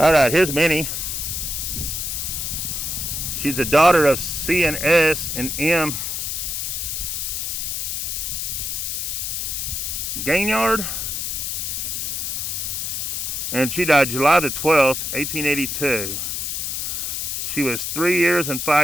right, here's Minnie. She's the daughter of C and S and M. Granger, and she died July the 12th, 1882. She was 3 years and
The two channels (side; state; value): left; noise; hiss, 2 dB below the sound